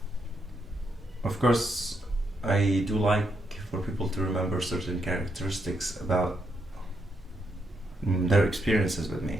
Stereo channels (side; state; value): both; normal; correlation 0.79